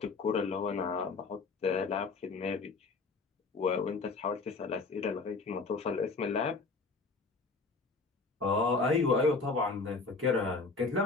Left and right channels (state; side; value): quieter; right; 4.0 dB